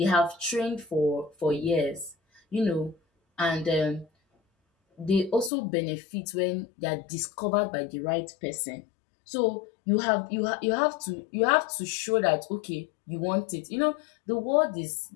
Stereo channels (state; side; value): drops out; right; at 5.5 s